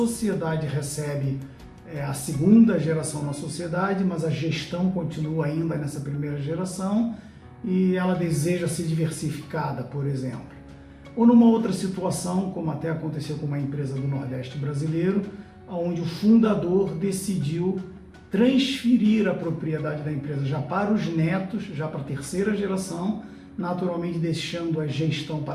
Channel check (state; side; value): identical; both; correlation 1.00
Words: recebe a segunda geração na sociedade, mas a gestão continua ainda nessa primeira geração e ela deseja ser diversificada, por exemplo. Ou numa outra situação, como até aconteceu com uma empresa do Nordeste brasileiro, onde o fundador decidiu transferir a propriedade da empresa já para os netos, já para a terceira geração, naturalmente deixando a gestão